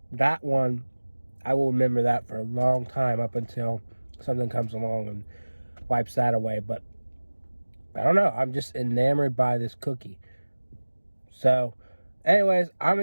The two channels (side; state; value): both; inverted; correlation -1.00